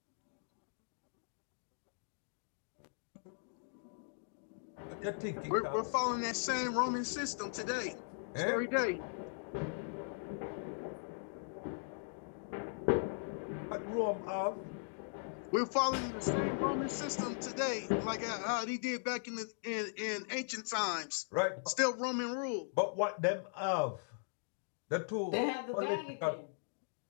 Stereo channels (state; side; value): silent; right; digital silence